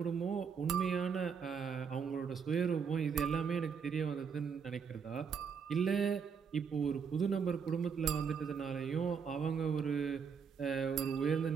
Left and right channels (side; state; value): left; quieter; 6.4 dB